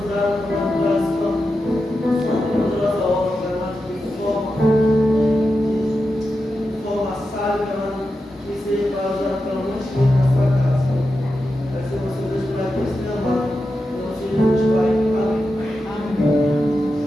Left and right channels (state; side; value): normal; both; correlation 0.89